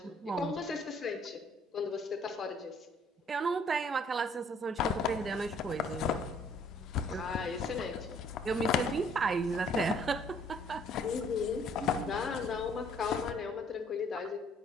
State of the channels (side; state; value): both; normal; correlation 0.61